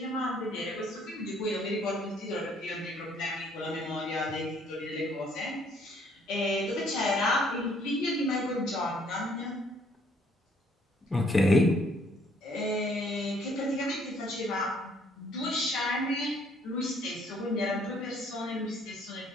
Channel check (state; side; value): normal; both; correlation 0.64